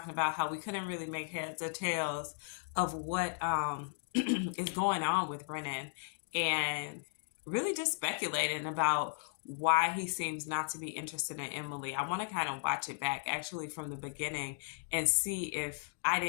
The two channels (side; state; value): right; silent; digital silence